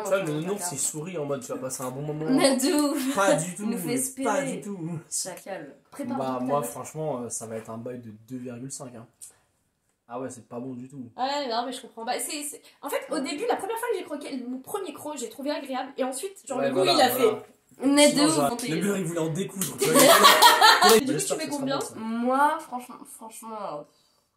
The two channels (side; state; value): both; identical; correlation 1.00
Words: dans vois, ton le nounours, placard. il sourit en mode tu vas passer un bon moment. Nadou. Pas du tout. Il nous fait espérer. Pas du tout. Chacal. Prépare. Bah, moi, franchement, ça va être un bail de 2,5. Hein. Ah ouais, c'est pas bon du tout. Ouais, non, mais je comprends. Bah, En fait, au début, la première fois que j'ai croqué mon premier croc, j'ai trouvé agréable. Et ensuite, genre, Ouais, le goût, voilà, il a voilà. Nadou. Sinon, genre, montez. le beurre, il voulait en découdre. Du coup, tu mets combien? Moi, franchement,